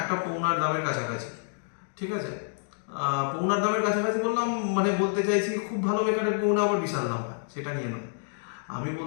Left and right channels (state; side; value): silent; right; digital silence